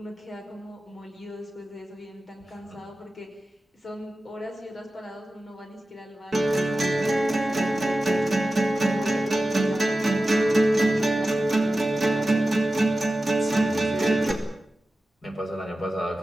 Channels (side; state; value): both; normal; correlation 0.94